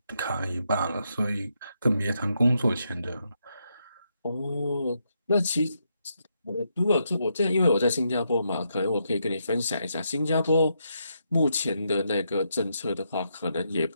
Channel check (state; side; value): inverted; both; correlation -0.80